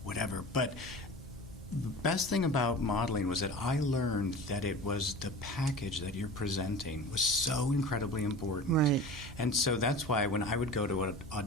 whatever. But the best thing about modeling was that I learned that it was the package that you're presenting was so incredibly important. Right. And so that's why when I would go to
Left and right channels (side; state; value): both; normal; correlation 0.35